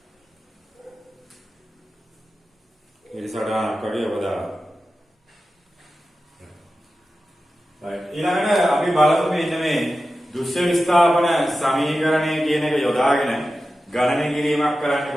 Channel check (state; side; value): normal; both; correlation 0.93